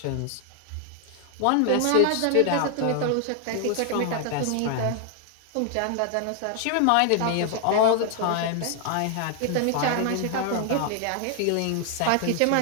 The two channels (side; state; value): both; different; correlation 0.00